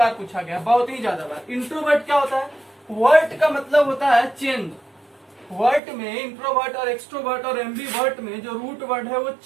पूछा गया, बहुत ही ज्यादा बार। इंट्रोवर्ट क्या होता है? वर्ट का मतलब होता है चेंज। वर्ट में इंट्रोवर्ट और एक्सट्रोवर्ट और एम्बीवर्ट में जो रूट वर्ड है वो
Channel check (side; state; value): left; drops out; at 5.8 s